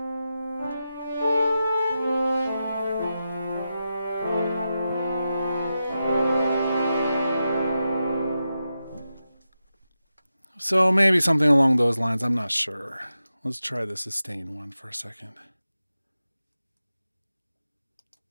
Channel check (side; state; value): both; inverted; correlation -0.90